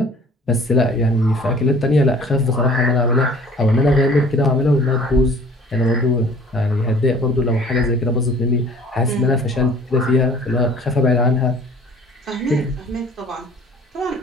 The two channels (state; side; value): normal; both; correlation 0.51